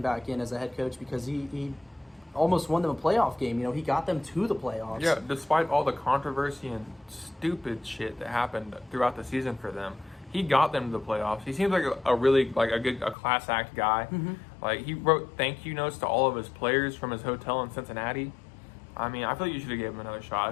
back in as a head coach, because he almost won them a playoff game. He got them to the playoffs. Yeah, despite all the controversy and stupid shit that happened throughout the season for them, he got them to the playoffs. He seems like a class act guy. Mm-hmm. He wrote thank you notes to all of his players from his hotel in Cincinnati. I feel like you should have given him another shot.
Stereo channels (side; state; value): right; drops out; at 13.2 s